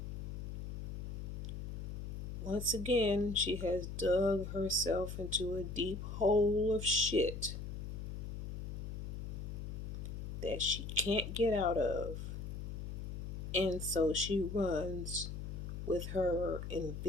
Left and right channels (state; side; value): noise; left; hum, 6 dB below the sound